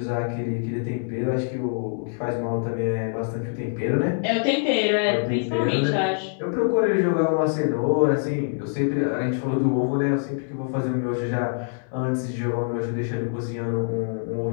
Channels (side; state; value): right; silent; digital silence